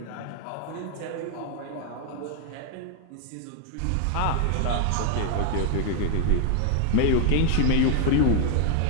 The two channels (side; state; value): both; different; correlation 0.00